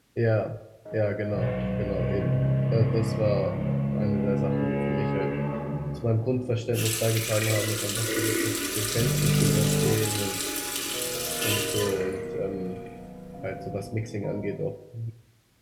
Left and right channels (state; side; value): identical; both; correlation 1.00